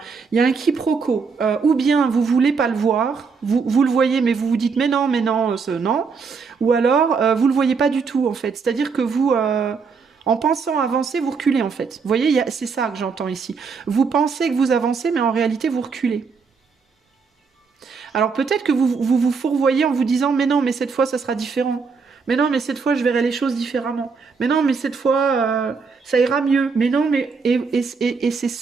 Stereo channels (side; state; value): left; quieter; 5.2 dB